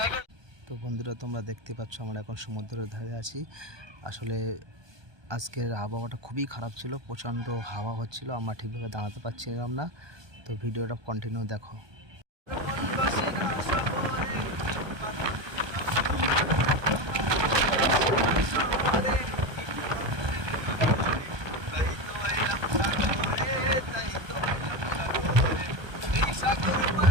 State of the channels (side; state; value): left; late; 1.2 ms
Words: করে। তো বন্ধুরা, তোমরা দেখতে পাচ্ছ আমরা এখন সমুদ্রের ধারে আছি। আসলে আজকের আবহাওয়াটা খুবই খারাপ ছিল, প্রচণ্ড হাওয়া হচ্ছিল, আমরা ঠিকভাবে দাঁড়াতে পারছিলাম না। তো ভিডিওটা কন্টিনিউ দেখো।